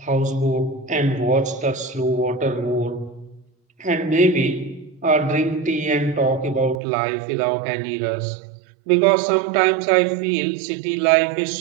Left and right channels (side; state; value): left; drops out; at 6.8 s